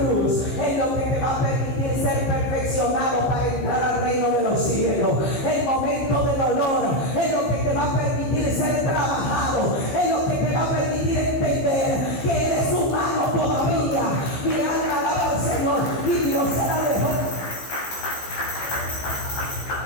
es lo que te va a permitir ser perfeccionado para entrar al reino de los cielos. El momento de dolor es lo que te va a permitir ser trabajado, es lo que te va a permitir entender que eres humano todavía. Mi alma alaba al Señor, y Dios se la dejó.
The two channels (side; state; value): right; late; 15 ms